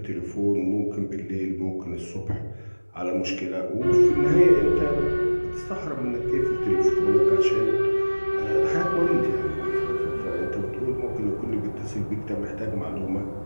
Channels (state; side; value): inverted; both; correlation -1.00